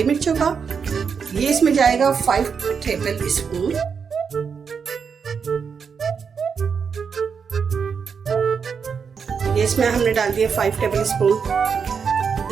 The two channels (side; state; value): left; quieter; 6.2 dB